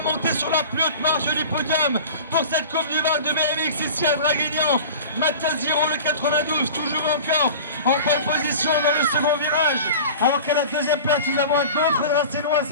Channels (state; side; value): inverted; both; correlation -0.37